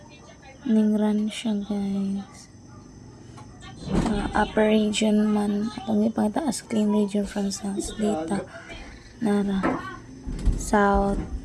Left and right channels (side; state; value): both; identical; correlation 1.00